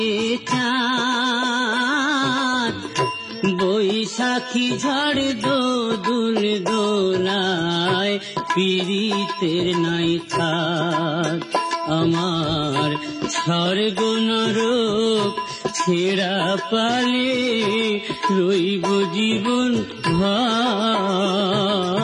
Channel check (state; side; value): identical; both; correlation 1.00